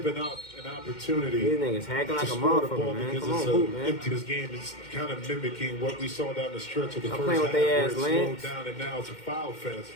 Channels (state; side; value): late; right; 2.1 ms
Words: up an opportunity. These niggas hacking like to a score the motherfucker, ball man. because Come on, it's hoop, an man. empty. This game is kind of mimicking what we saw down the stretch of the Stop first playing half, with they where ass, it slowed Lance. down and now it's a foul fest.